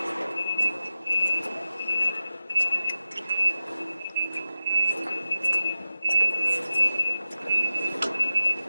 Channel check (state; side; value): inverted; both; correlation -0.94